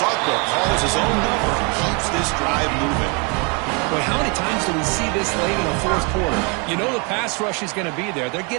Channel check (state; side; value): quieter; left; 32.8 dB